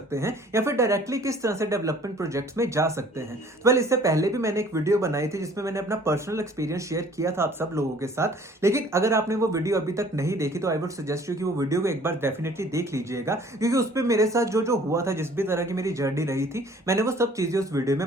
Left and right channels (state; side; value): normal; both; correlation 0.53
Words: हैं या फिर डायरेक्टली किस तरह से डेवलपमेंट प्रोजेक्ट्स में जा सकते हैं। वेल इससे पहले भी मैंने एक वीडियो बनाई थी जिसमें मैंने अपना पर्सनल एक्सपीरियंस शेयर किया था आप सब लोगों के साथ। लेकिन अगर आपने वो वीडियो अभी तक नहीं देखी तो आई वुड सजेस्ट यू कि वो वीडियो को एक बार डेफिनेटली देख लीजिएगा, क्योंकि उस पर मेरे साथ जो जो हुआ था, जिस भी तरह की मेरी जर्नी रही थी, मैंने वो सब चीजें उस वीडियो